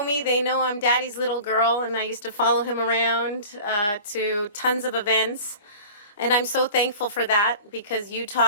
me, they know I'm Daddy's little girl, and I used to follow him around to tons of events. And I'm so thankful for that, because you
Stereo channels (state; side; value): inverted; both; correlation -0.40